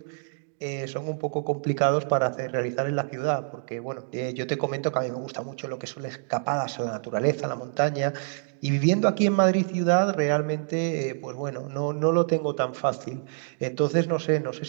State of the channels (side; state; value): left; silent; digital silence